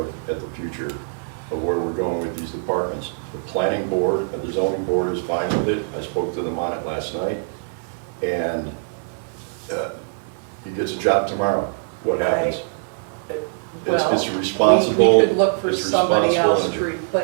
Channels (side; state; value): left; silent; 64 dB below the other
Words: at the future of where we're going with these departments. The planning board and the zoning board is fine with it. I spoke to them on it last night, and he gets a job tomorrow. What happens? It's responsible. We could look for somebody else to